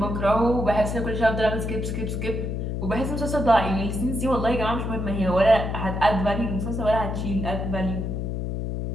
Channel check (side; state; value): left; noise; hum, 3 dB below the sound